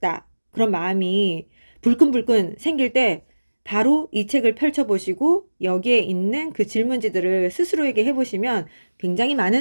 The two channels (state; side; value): inverted; both; correlation -1.00